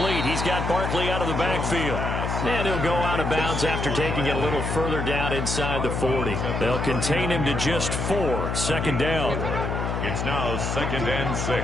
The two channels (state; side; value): noise; left; hum, 2 dB below the sound